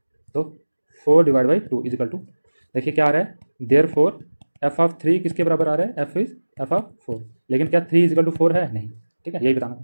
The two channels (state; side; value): inverted; both; correlation -1.00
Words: तो 4 / 2 = 2। देखिए क्या आ रहा है, देयरफॉर f ऑफ 3 किसके बराबर आ रहा है, f इज f ऑफ 4। लेकिन क्या 3 = 4 है, नहीं, ठीक है, यही बताना।